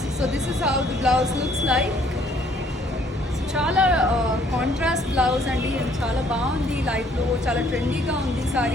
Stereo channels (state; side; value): normal; both; correlation 0.62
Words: So this is how the blouse looks like. చాలా contrast blouse అండి, చాలా బాగుంది, లైఫ్లో చాలా ట్రెండీగా ఉంది